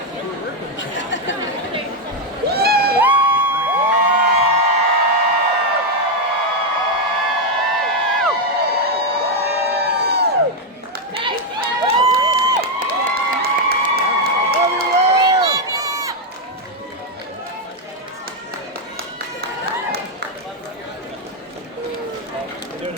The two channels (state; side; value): normal; both; correlation 0.04